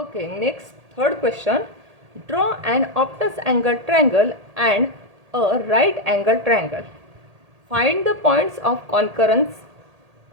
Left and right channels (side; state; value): left; late; 1.8 ms